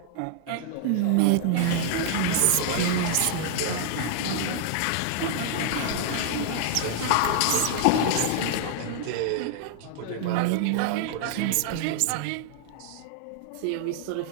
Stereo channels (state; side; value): different; both; correlation 0.00